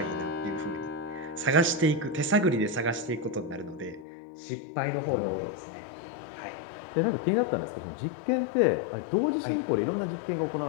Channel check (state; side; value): drops out; right; at 4.0 s